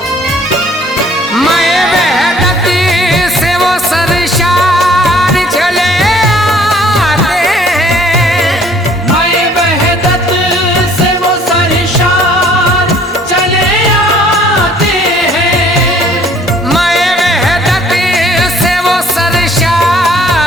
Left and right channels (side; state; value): both; normal; correlation 0.57